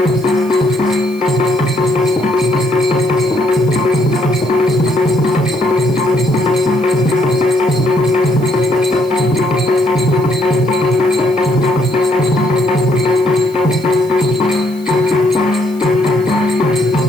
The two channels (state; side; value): noise; left; hiss, 25 dB below the sound